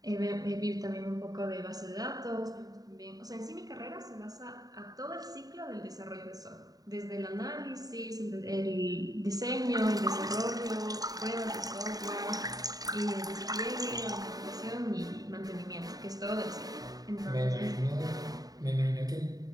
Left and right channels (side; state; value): left; late; 0.18 ms